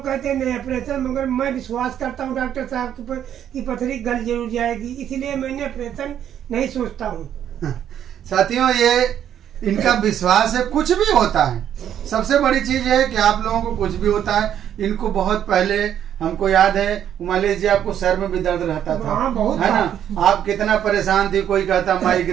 कहते हैं नहीं ऑपरेशन, मगर मैं विश्वास करता हूँ डॉक्टर साहब के ऊपर कि पथरी गल जरूर जाएगी, इसीलिए मैंने ऑपरेशन नहीं सोचता हूँ। साथियों, ये इनका विश्वास है। कुछ भी होता है, सबसे बड़ी चीज है कि आप लोगों को कुछ भी होता है। इनको बहुत पहले हमको याद है, उमालेश जी, आपको सर में भी दर्द रहता था, है ना? आप कितना परेशान थी, कोई कहता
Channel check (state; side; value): quieter; left; 9.9 dB